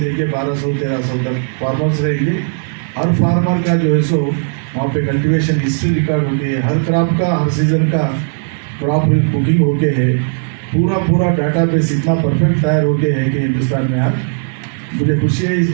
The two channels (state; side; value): silent; left; digital silence